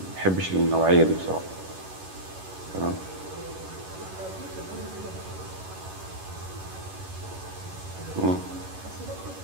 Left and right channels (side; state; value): left; late; 11 ms